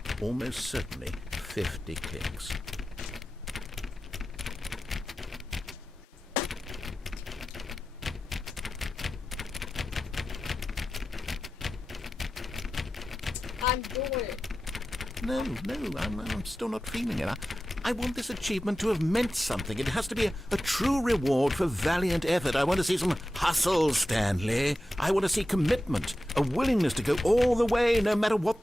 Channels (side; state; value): both; normal; correlation 0.93